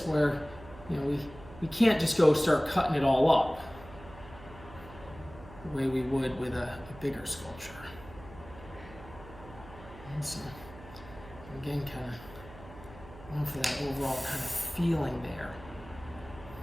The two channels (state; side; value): noise; right; hum, 18 dB below the sound